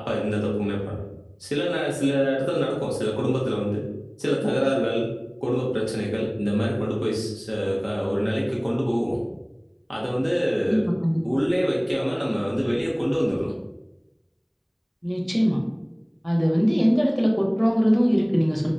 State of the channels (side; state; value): both; identical; correlation 1.00